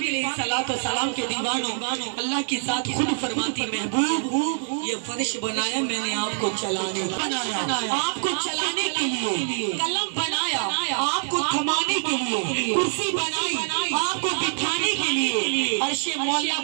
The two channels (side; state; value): left; silent; 62 dB below the other